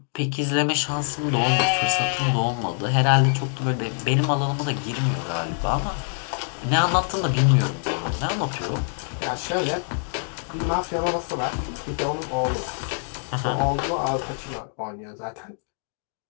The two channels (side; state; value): right; silent; 60 dB below the other